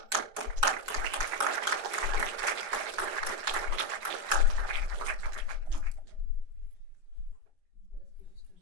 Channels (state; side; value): late; left; 4.9 ms